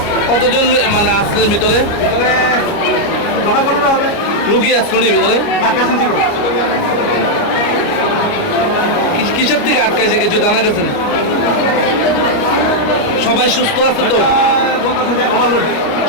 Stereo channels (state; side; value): late; right; 29 ms